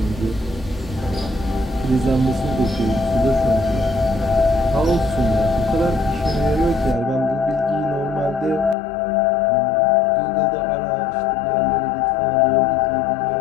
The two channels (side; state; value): right; drops out; at 8.8 s